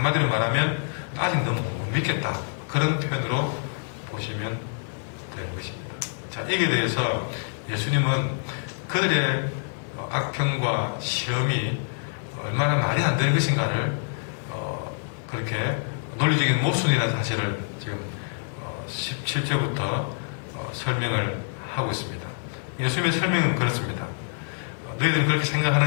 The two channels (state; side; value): silent; right; digital silence